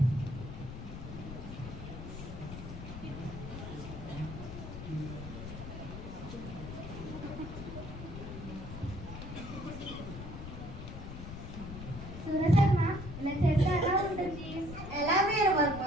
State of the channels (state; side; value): noise; left; rumble, 9 dB below the sound